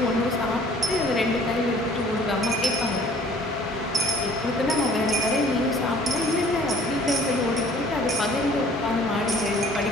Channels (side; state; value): both; normal; correlation 0.54